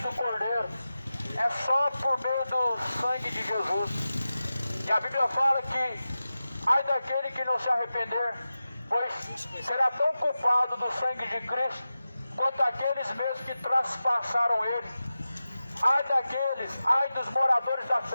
Cordeiro. É só por meio do sangue de Jesus. E a Bíblia fala que ai daquele que não se arrepender, pois será tão culpado do sangue de Cristo quanto aqueles mesmos que traspassaram ele. Ai daqueles, ai dos moradores da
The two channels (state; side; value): inverted; both; correlation -0.94